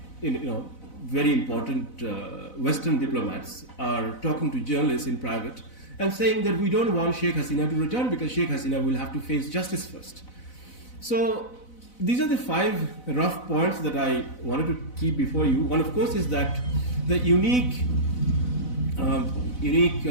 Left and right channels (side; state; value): right; late; 4.0 ms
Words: very important Western diplomats are talking to journalists in private and saying that we don't want Sheikh Hasina to return because Sheikh Hasina will have to face justice first. So these are the 5 rough points that I wanted to keep before you. One, of course, is that the unique